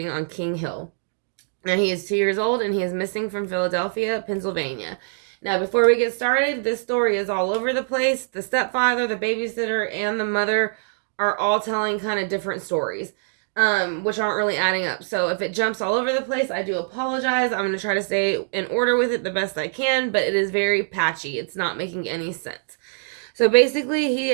on King Hill. Now, he is 2 years old and he is missing from Philadelphia, Pennsylvania. Now, before we get started, this story is all over the place. The stepfather, the babysitter, and the mother are all telling kind of different stories, which aren't really adding up. So, if it jumps all over the place, I do apologize. I'm going to try to stay in order with it the best I can, but it is very patchy. It's not making any sense. So basically, he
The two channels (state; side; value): silent; left; digital silence